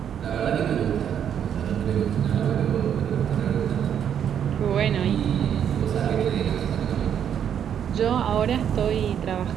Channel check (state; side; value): quieter; left; 8.9 dB